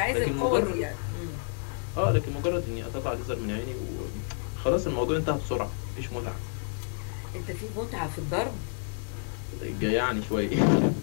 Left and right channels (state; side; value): silent; right; 58 dB below the other